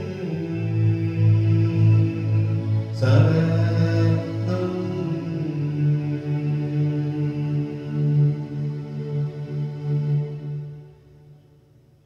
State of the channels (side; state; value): both; identical; correlation 1.00